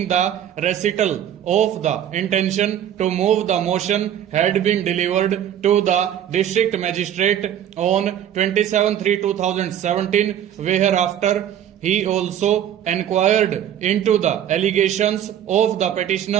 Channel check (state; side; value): quieter; left; 10.3 dB